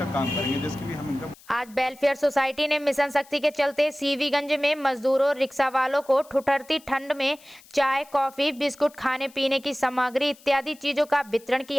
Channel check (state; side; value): noise; left; hiss, 25 dB below the sound